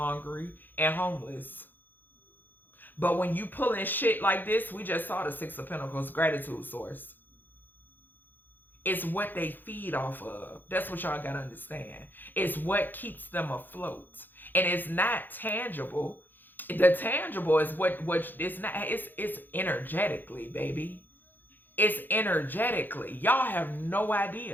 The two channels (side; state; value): right; late; 0.090 ms